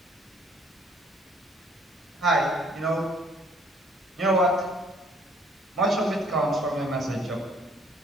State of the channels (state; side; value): normal; both; correlation 0.61